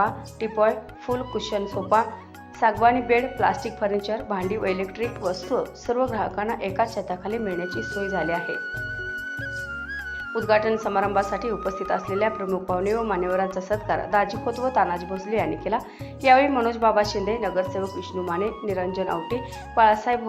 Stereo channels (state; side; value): identical; both; correlation 1.00